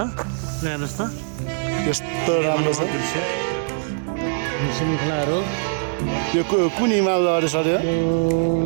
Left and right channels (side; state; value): left; silent; digital silence